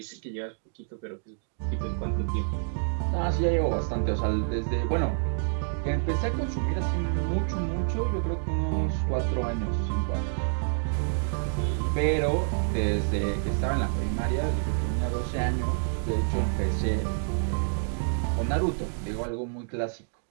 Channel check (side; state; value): left; silent; digital silence